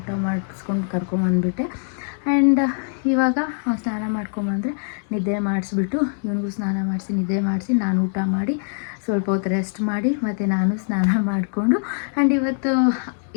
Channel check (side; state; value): right; silent; digital silence